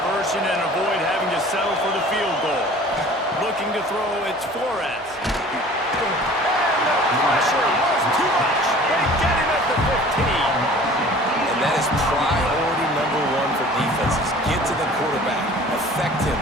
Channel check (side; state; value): both; normal; correlation 0.46